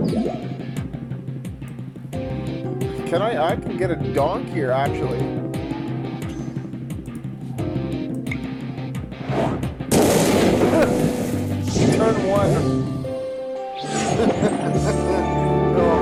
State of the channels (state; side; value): identical; both; correlation 1.00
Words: I can get a donk here, actually. Turn one. Oh,